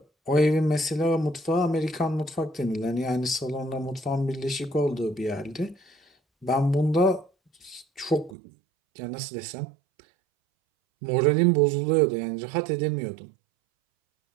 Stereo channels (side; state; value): left; drops out; at 8.3 s